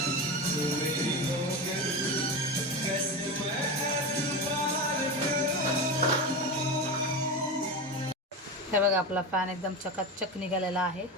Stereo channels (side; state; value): both; normal; correlation 0.22